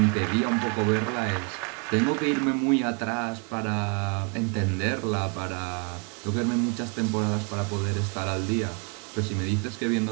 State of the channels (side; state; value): left; quieter; 36.2 dB